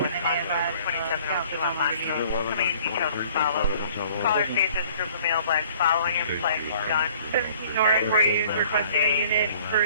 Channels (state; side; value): inverted; both; correlation -0.54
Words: Caller station group of male blacks following him, flags gun. 17 Nora 40 is requesting a unit